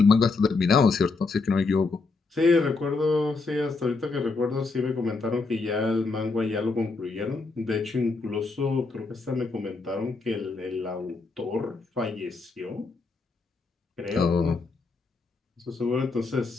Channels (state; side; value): quieter; right; 4.0 dB